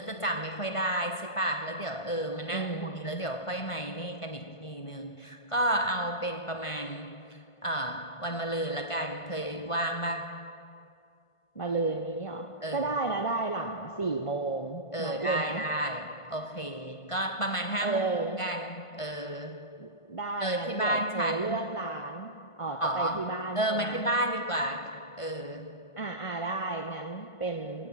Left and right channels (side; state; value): right; late; 1.5 ms